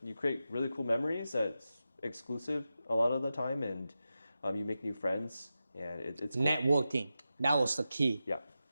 you create really cool memories that exclusive a lot of the time, and you make new friends, and it's cool. Networking, that was the key. Yeah.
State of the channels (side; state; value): both; inverted; correlation -0.91